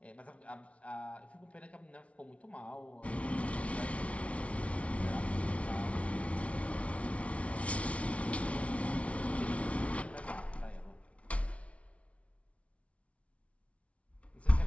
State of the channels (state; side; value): late; right; 0.063 ms